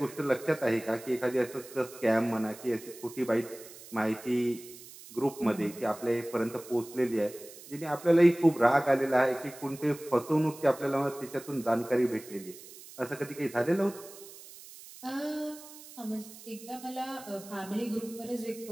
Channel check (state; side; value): noise; right; hiss, 17 dB below the sound